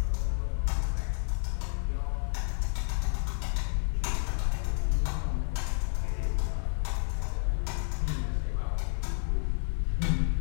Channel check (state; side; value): silent; right; 58 dB below the other